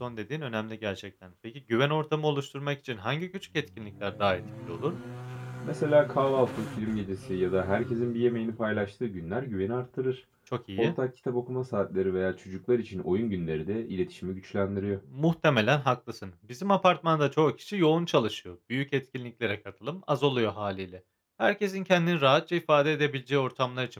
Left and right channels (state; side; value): identical; both; correlation 1.00